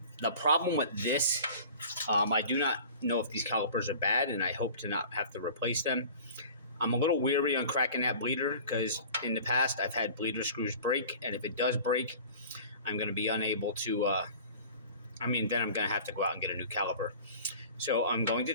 The problem with this, I do not know if these calipers are bad, and I hope to not have to replace them. I'm a little weary on cracking that bleeder because in the past I've had bleeder screws break, and if it does break, I'm going to be unable to, then I'm going to have to go out and get a new caliper. So I'm going to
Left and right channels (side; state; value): both; inverted; correlation -0.42